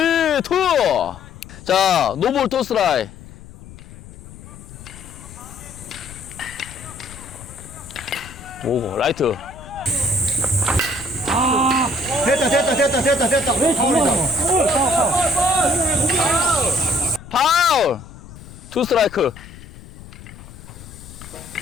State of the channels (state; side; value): noise; left; rumble, 17 dB below the sound